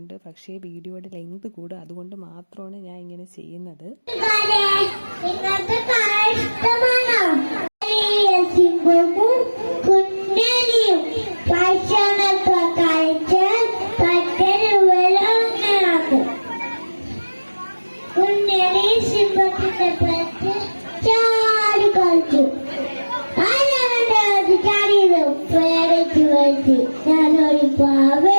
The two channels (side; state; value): both; inverted; correlation -1.00